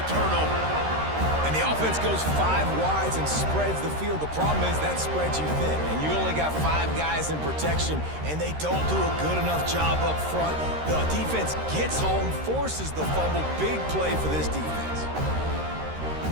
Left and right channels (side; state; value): left; late; 13 ms